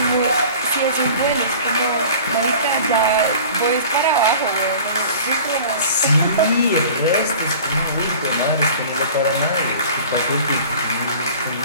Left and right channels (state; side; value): inverted; both; correlation -0.43